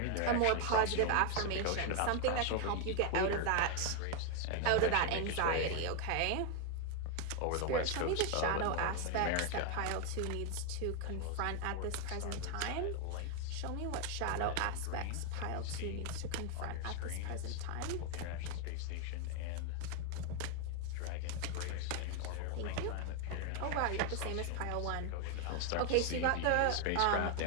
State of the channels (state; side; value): different; both; correlation 0.01